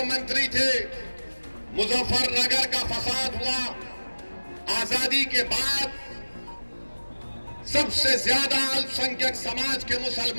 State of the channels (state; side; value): inverted; both; correlation -1.00